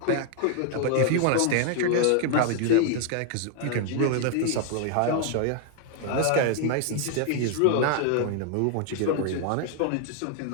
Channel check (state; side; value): different; both; correlation 0.00